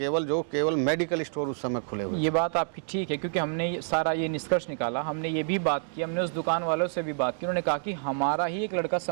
केवल मेडिकल स्टोर उस समय खुले हुए। ये बात आपकी ठीक है, क्योंकि हमने सारा ये निष्कर्ष निकाला, हमने ये भी बात की, हमने उस दुकान वालों से भी बात की, उन्होंने कहा कि हमारा ही एक लड़का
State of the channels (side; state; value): left; silent; digital silence